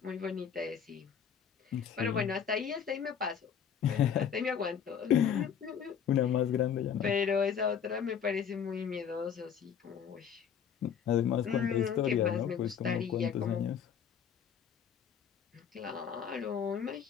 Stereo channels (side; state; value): right; quieter; 7.8 dB